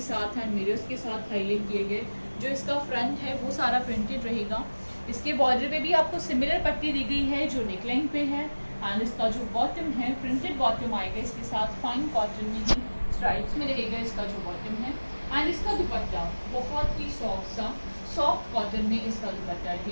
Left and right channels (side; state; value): both; inverted; correlation -1.00